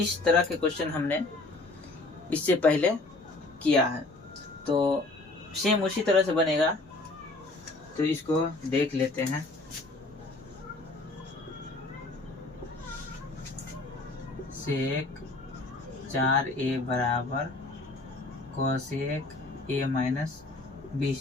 तरह के क्वेश्चन हमने इससे पहले किया है, तो सेम उसी तरह से बनेगा। तो इसको देख लेते हैं। सेक 4a बराबर कोसेक ए माइनस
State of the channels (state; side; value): quieter; right; 3.1 dB